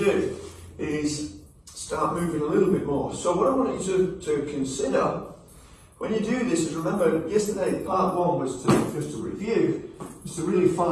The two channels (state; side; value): identical; both; correlation 1.00